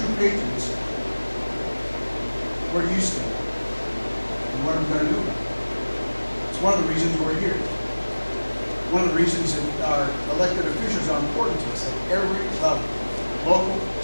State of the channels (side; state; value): both; inverted; correlation -1.00